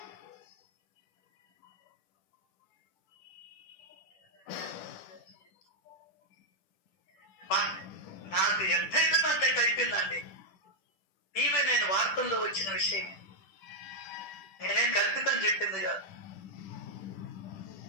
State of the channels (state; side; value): late; right; 10 ms